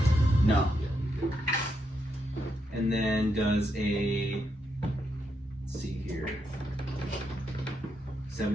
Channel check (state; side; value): normal; both; correlation 0.81